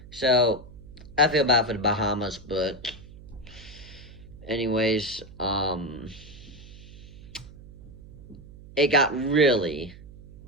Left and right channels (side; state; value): right; noise; hum, 18 dB below the sound